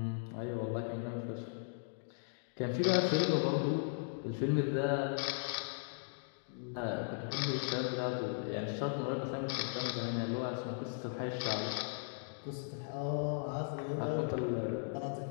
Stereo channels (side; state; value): right; silent; digital silence